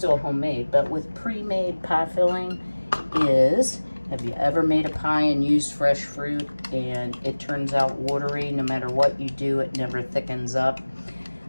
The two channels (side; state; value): both; inverted; correlation -1.00